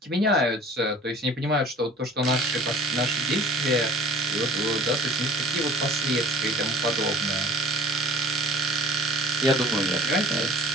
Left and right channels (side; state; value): both; normal; correlation 0.47